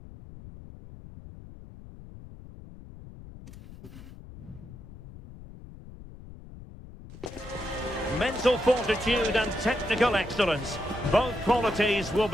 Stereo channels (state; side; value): noise; left; rumble, 16 dB below the sound